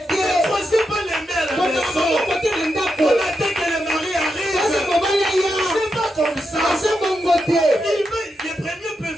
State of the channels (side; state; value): both; normal; correlation 0.85